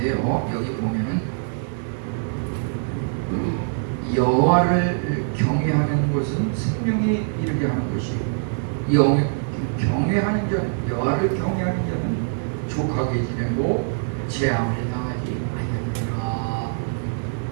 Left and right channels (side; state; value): left; silent; 63 dB below the other